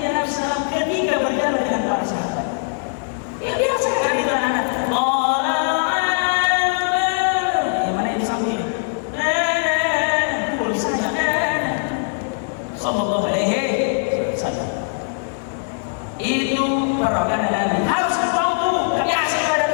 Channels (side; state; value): right; silent; digital silence